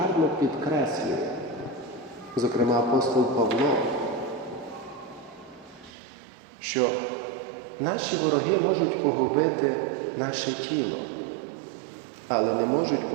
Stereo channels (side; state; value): left; drops out; at 5.9 s